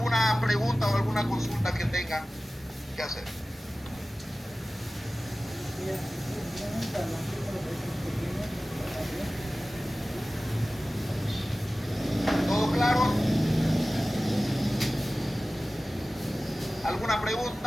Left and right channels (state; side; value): normal; both; correlation 0.96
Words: pregunta o alguna consulta que tengan que hacer? ¿Todo claro? ¿Alguna